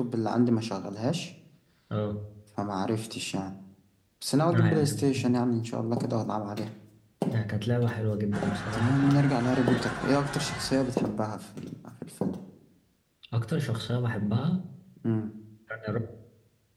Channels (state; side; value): identical; both; correlation 1.00